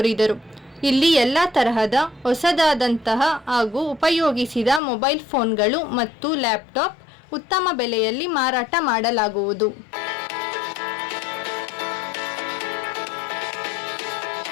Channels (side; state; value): right; drops out; at 4.8 s